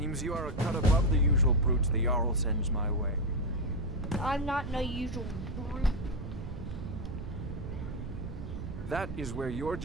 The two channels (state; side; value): noise; right; rumble, 8 dB below the sound